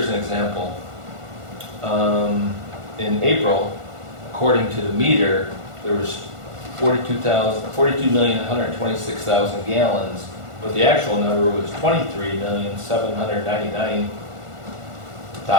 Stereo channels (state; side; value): late; left; 1.5 ms